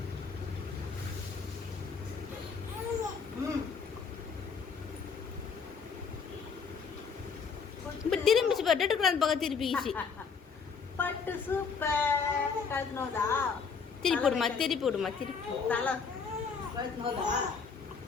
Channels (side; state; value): right; quieter; 5.7 dB